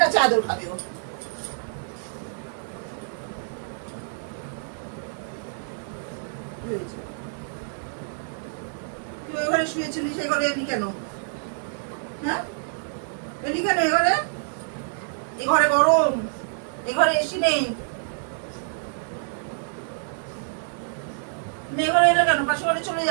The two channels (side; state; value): left; silent; digital silence